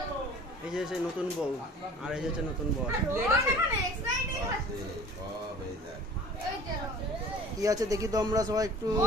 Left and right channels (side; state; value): both; normal; correlation 0.46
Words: এই যে সেই নতুন বউ, আর এই যে হচ্ছে নতুন বউ। কি আছে দেখি তো আমরা সবাই একটু।